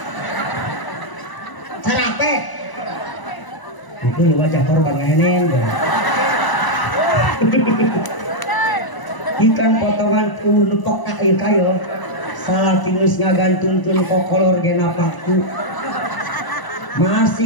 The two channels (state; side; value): late; right; 1.0 ms